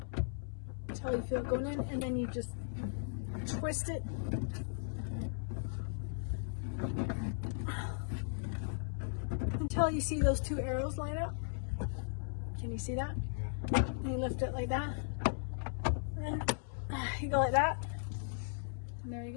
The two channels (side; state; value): right; silent; 53 dB below the other